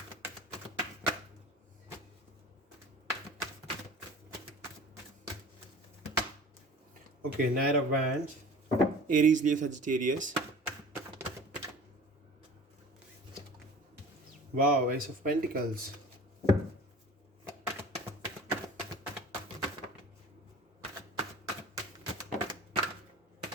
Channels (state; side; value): normal; both; correlation 0.42